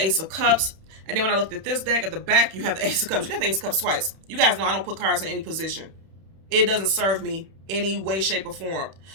Ace of Cups. And then when I looked at this deck, at the back, you have the Ace of Cups. You have the Ace of Cups twice. You guys know I don't put cards in any position. It doesn't serve me any way, shape, or form.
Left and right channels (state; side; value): late; left; 31 ms